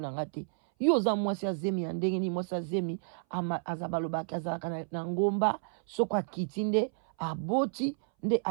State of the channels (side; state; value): left; silent; 57 dB below the other